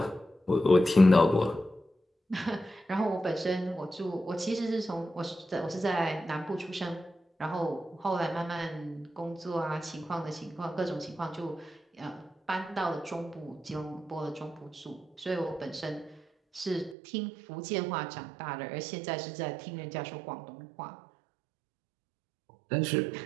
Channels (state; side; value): drops out; left; at 16.9 s